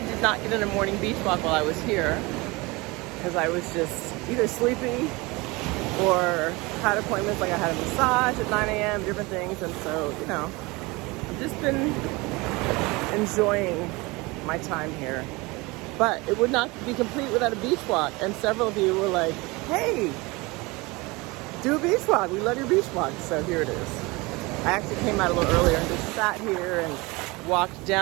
did not get in a morning beach walk while I was here. Because I was just either sleepy or had appointments, like I had a massage at 9 a.m., different things. And so, you know, I've just been enjoying my time here. But it would not be complete without a beach walk. And several of you were like, hey, do a beach walk. We love your beach walk. So here it is. I actually came out a little earlier and just sat here and walked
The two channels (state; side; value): quieter; left; 24.1 dB